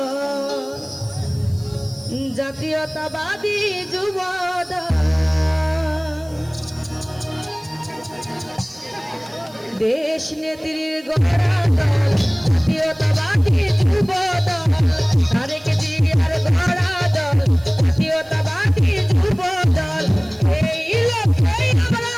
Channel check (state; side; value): noise; right; hiss, 26 dB below the sound